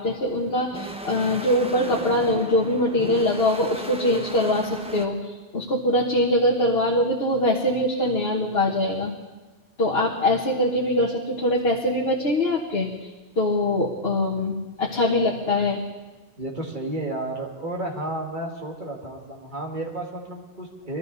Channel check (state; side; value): normal; both; correlation -0.09